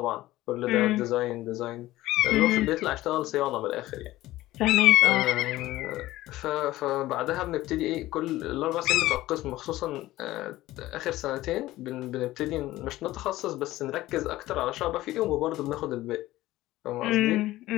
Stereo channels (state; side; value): quieter; right; 16.4 dB